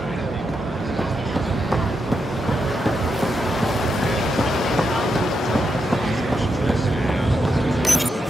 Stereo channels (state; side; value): normal; both; correlation 0.84